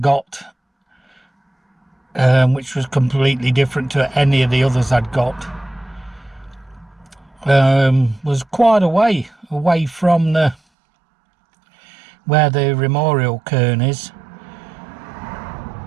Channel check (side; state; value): left; drops out; at 10.6 s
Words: which was completely different to any of the others I'd got, was quite away from where the memorial cairn is,